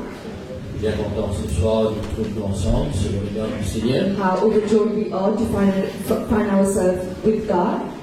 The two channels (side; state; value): both; identical; correlation 1.00